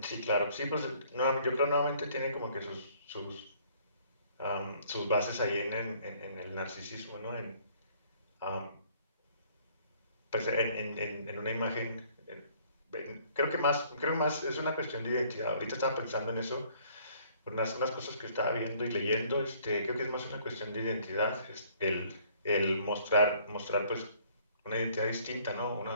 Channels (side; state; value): both; inverted; correlation -0.60